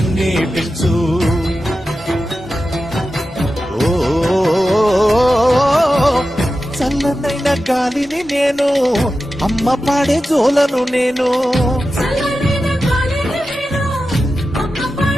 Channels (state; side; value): normal; both; correlation 0.92